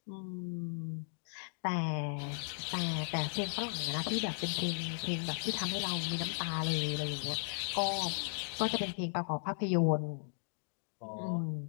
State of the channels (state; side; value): silent; right; digital silence